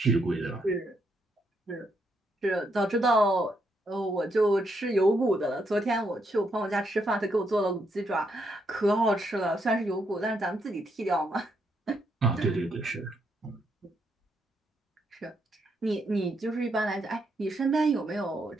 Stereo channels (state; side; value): normal; both; correlation 0.77